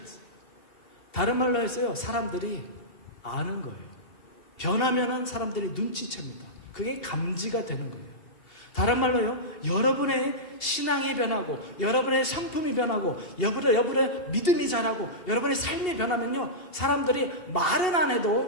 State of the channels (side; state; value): right; late; 2.7 ms